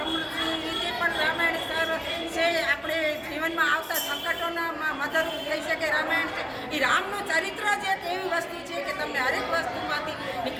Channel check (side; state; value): both; identical; correlation 1.00